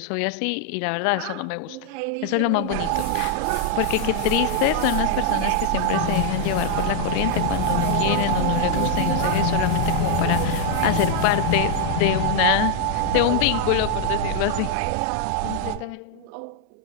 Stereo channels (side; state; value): both; different; correlation 0.00